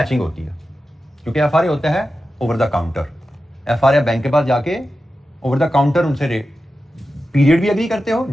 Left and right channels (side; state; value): both; normal; correlation 0.92